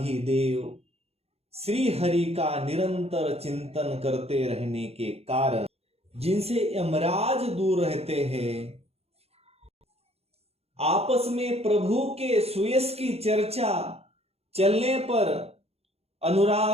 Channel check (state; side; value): late; left; 0.29 ms